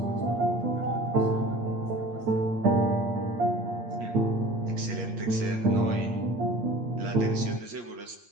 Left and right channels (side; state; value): left; late; 8.6 ms